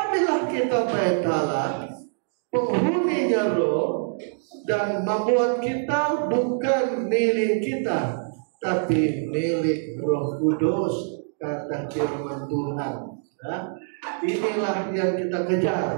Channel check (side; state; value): left; silent; digital silence